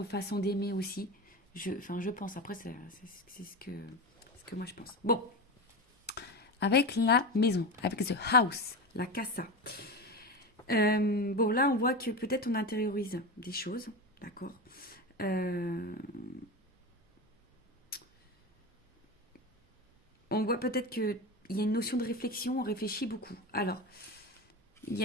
façons d'aimer aussi. Enfin, je pense. Après, c'est ce que moi je pense. Bon, avec la maison, avec the house, la casa. Bon, là, on voit que peut-être on intériorise des choses, d'accord. Euh, on voit peut-être qu'il y a une notion de réflexion, on réfléchit beaucoup. Alors,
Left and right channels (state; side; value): normal; both; correlation 0.22